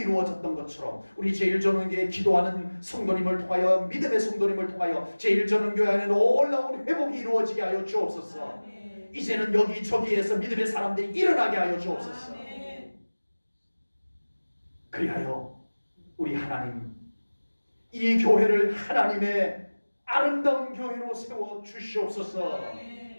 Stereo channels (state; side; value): inverted; both; correlation -1.00